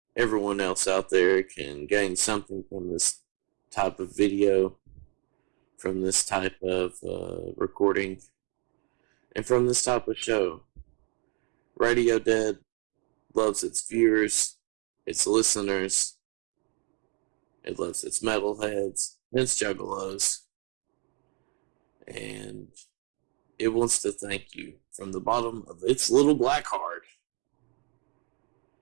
everyone else out there can gain something from this type of video, from this type of recording, and from this type of show. Radio Dead loves its viewers, its listeners, it loves its metalheads, its juggalos, and it wants to thank you from the bottom of its little black heart.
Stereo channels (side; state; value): left; quieter; 35.0 dB